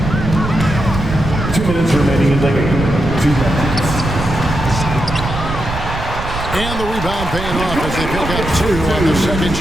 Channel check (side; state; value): right; noise; rumble, 7 dB below the sound